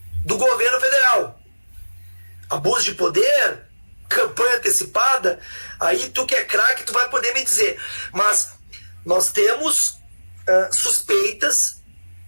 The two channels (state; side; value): inverted; both; correlation -1.00